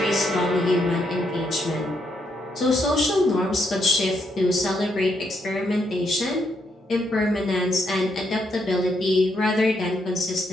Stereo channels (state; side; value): normal; both; correlation 0.77